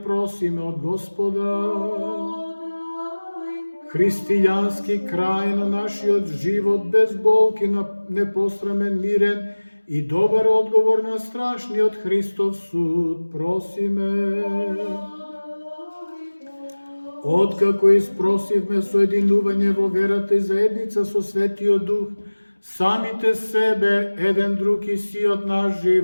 просиме од Господа. Христијански крај на нашиот живот, без болки, непострамен, мирен и добар одговор на страшниот Христов суд, просиме. Откако испросивме соединување во верата и заедница со Светиот Дух, самите себе, еден друг и сиот наш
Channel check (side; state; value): both; inverted; correlation -1.00